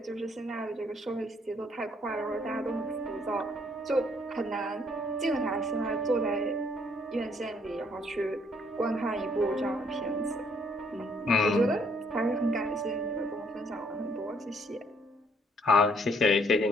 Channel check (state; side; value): normal; both; correlation 0.66